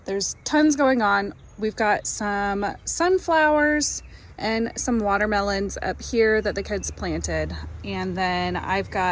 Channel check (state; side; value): identical; both; correlation 1.00